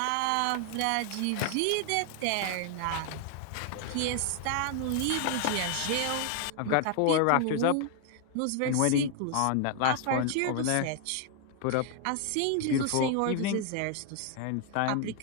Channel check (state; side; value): different; both; correlation 0.00